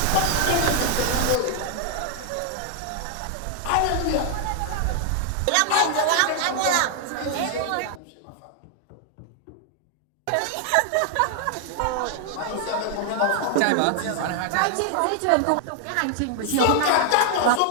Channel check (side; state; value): both; different; correlation 0.00